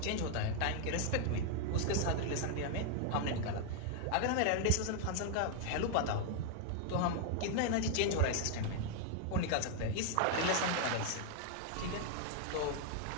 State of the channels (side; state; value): both; different; correlation 0.00